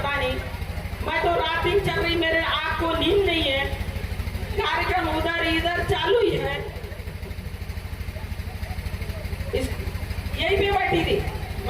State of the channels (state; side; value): identical; both; correlation 1.00